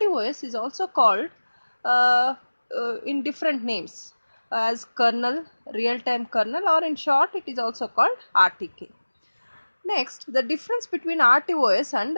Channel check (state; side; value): inverted; both; correlation -1.00